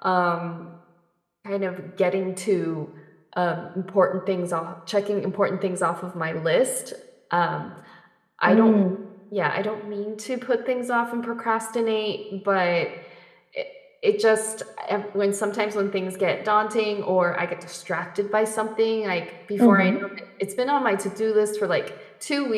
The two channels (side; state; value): both; identical; correlation 1.00